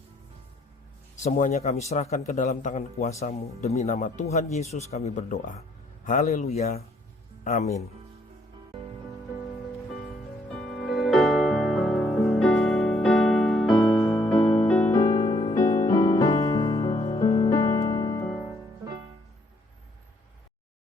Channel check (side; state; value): both; normal; correlation 0.67